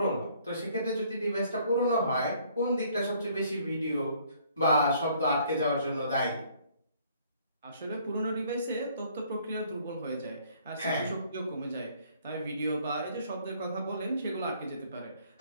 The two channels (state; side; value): inverted; both; correlation -0.61